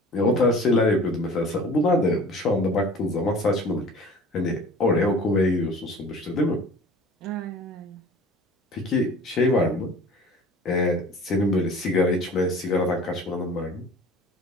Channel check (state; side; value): normal; both; correlation 0.44